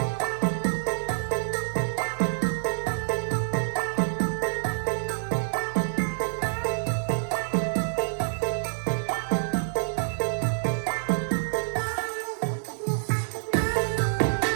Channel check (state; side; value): silent; left; digital silence